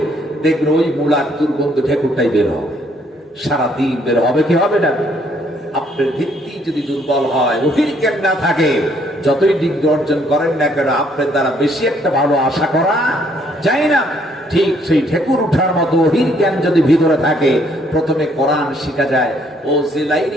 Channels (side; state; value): both; normal; correlation 0.67